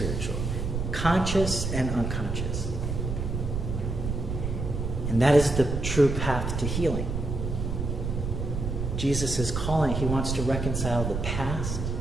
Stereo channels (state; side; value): noise; right; rumble, 3 dB below the sound